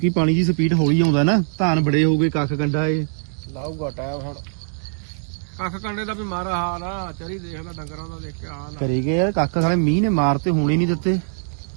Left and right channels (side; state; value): left; silent; digital silence